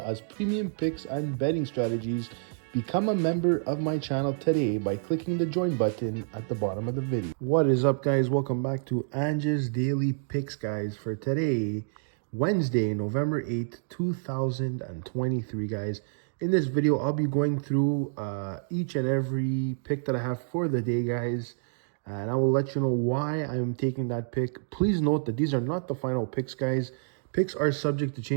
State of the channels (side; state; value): left; silent; digital silence